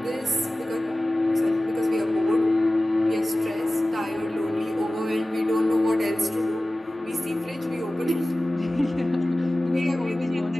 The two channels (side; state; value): both; normal; correlation 0.96